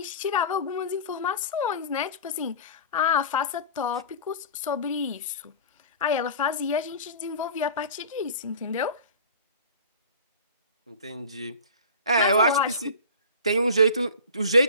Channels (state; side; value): inverted; both; correlation -0.37